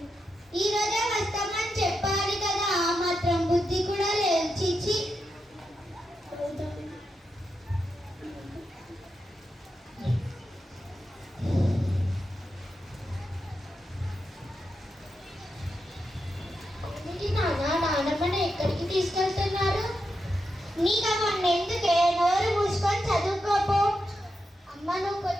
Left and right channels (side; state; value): both; normal; correlation 0.86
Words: ఈ రోజే వస్తామని చెప్పాలి కదా, ఆ మాత్రం బుద్ధి కూడా లేదు. చిచ్చి, నాన్నమ్మని ఎక్కడికి తీసుకెళ్తున్నారు? నీకు అవన్నీ ఎందుకే, నోరు మూసుకొని చదువుకోపో. అమ్మ,